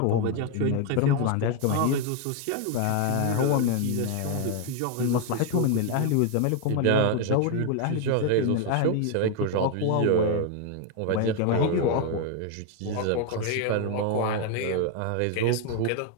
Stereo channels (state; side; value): different; both; correlation 0.01